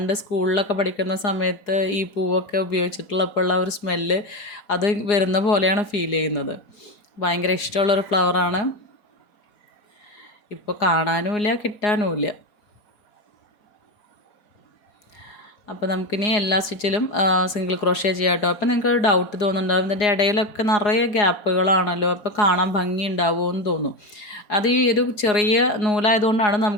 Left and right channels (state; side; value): late; right; 4.8 ms